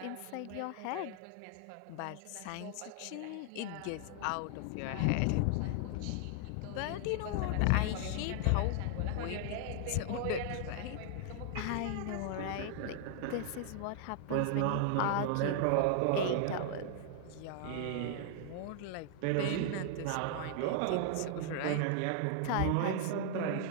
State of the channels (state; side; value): different; both; correlation -0.01